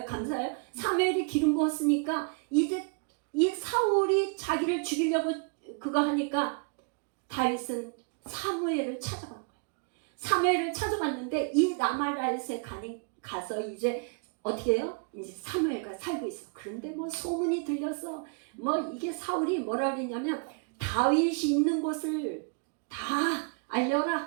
감사해요. 사무엘이 기름 부었으니까 이제 이 사울이 자기를 죽이려고 그거 하니까 다윗은 사무엘을 찾아간 거예요. 사무엘을 찾아갔는데 이 라마라요스에 가서 이제 어떻게 해요? 이제 사무엘과 살고 있어. 그런데 뭐 소문이 들렸어. 뭐 이게 사울이 뭐라 그랬냐면 다윗이 있는 곳을 다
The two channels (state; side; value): quieter; left; 39.2 dB